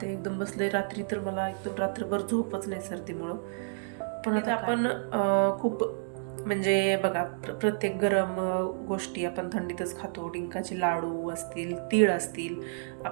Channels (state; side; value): silent; left; digital silence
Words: ते एकदम बसले. रात्री तर मला एकदम रात्रभर झोपच नाही सर्दीमुळं. पण आता आपण खूप म्हणजे बघा, प्रत्येक गरम गोष्टी आपण थंडीतच खातो. डिंकाचे लाडू असतील, तीळ असतील,